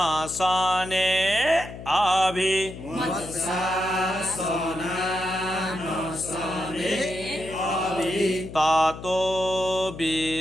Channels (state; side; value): noise; left; hum, 12 dB below the sound